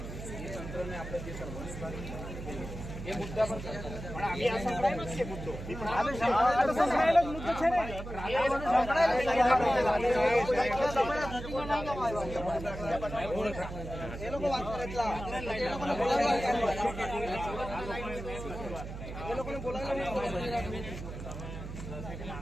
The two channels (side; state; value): right; noise; hum, 9 dB below the sound